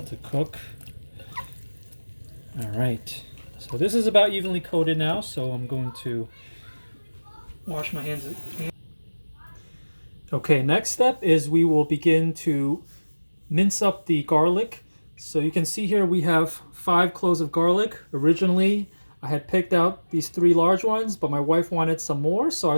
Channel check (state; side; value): inverted; both; correlation -1.00